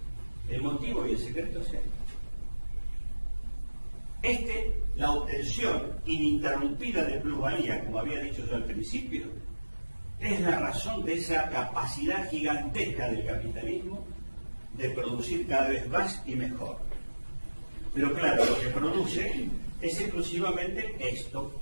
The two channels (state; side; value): inverted; both; correlation -1.00